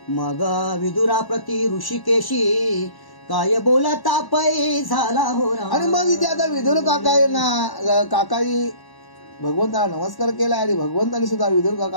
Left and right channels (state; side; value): late; right; 1.1 ms